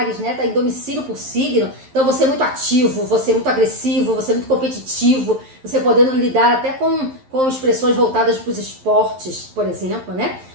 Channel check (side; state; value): left; late; 11 ms